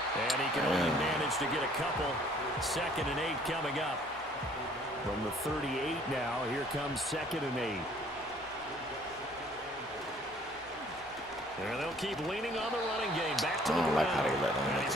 And he can only manage to get a couple. 2nd and 8 coming up. From the 38 now, here comes 2nd and 8. And they'll keep leaning on the running game. Back to the ground. And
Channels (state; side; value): normal; both; correlation 0.58